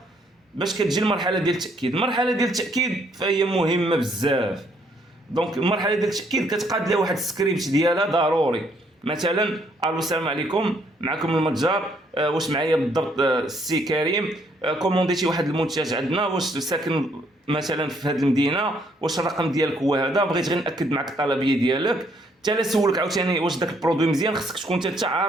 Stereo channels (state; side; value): normal; both; correlation 0.68